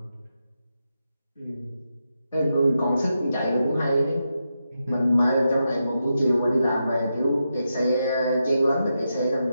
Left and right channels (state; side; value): inverted; both; correlation -0.86